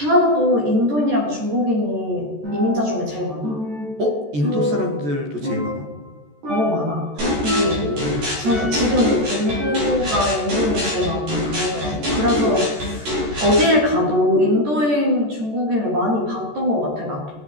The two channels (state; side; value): late; left; 14 ms